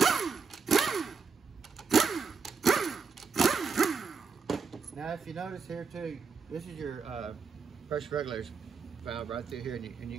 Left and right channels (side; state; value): left; quieter; 5.3 dB